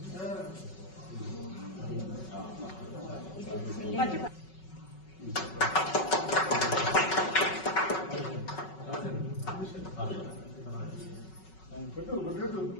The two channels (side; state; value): right; late; 5.4 ms